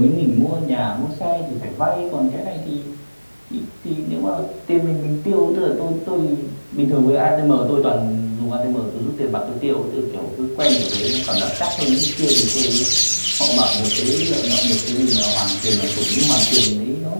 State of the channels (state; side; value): inverted; both; correlation -1.00